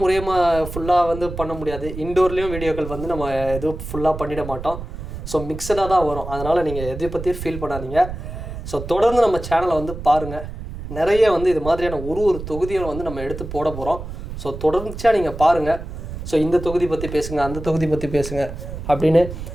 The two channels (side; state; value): right; noise; rumble, 9 dB below the sound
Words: ஃபுல்லாக வந்து பண்ண முடியாது, இன்டோர்லேயும் வீடியோக்கள் வந்து நம்ம எதுவும் ஃபுல்லாக பண்ணிட மாட்டோம். ஸோ மிக்சடாக தான் வரும். அதனால் நீங்கள் எதை பற்றியும் ஃபீல் பண்ணாதீங்க. ஸோ தொடர்ந்து நம்ம சேனலை வந்து பாருங்கள். நிறைய வந்து இது மாதிரியான ஒரு தொகுதியும் வந்து நம்ம எடுத்து போட போகிறோம். ஸோ தொடர்ச்சியாக நீங்கள் பாருங்கள். ஸோ இந்த தொகுதி பற்றி பேசுங்க, அந்த தொகுதி பற்றி பேசுங்க அப்படின்னு